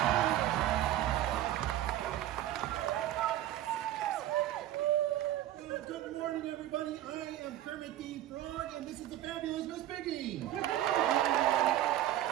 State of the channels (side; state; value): left; quieter; 13.2 dB